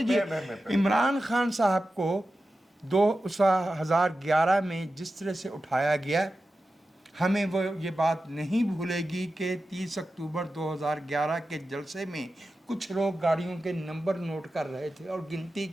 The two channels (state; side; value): normal; both; correlation 0.93